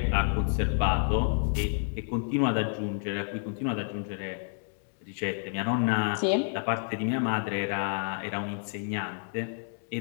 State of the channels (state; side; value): silent; right; 58 dB below the other